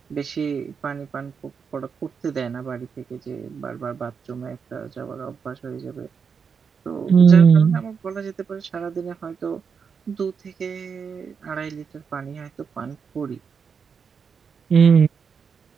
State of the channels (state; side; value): quieter; left; 6.2 dB